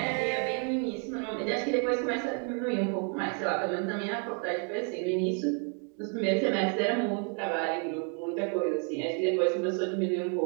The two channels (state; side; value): quieter; left; 39.1 dB